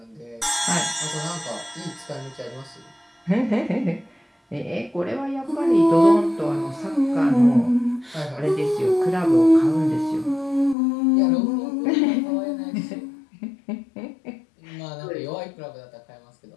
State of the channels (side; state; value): right; drops out; at 10.8 s